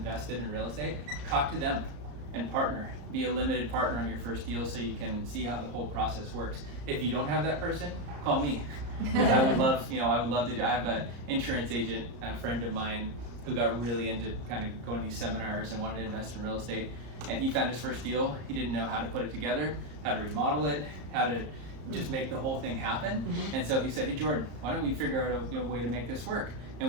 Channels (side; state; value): left; late; 34 ms